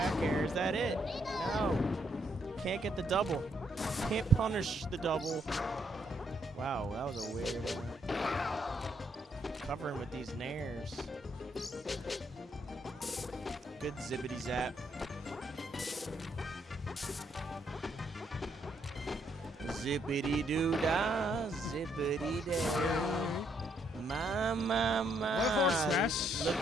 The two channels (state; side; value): normal; both; correlation 0.73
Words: air. Is that it? No. Can't get the double. Can't punish the double. Wow, that was a weird one. Covering with these nairs. Good zippity zap. Zippity doo dah, zippity day. My. Look